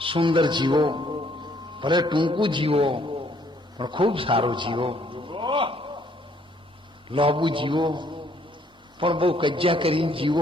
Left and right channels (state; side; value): normal; both; correlation 0.65